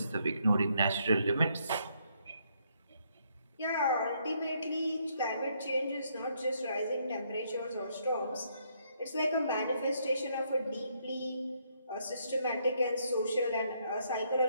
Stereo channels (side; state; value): both; inverted; correlation -0.72